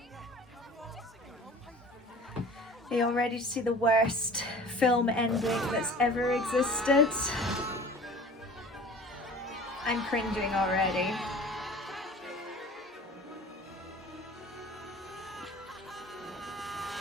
Are you all ready to see the worst film ending that's ever existed. I'm cringing already.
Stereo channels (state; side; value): normal; both; correlation 0.42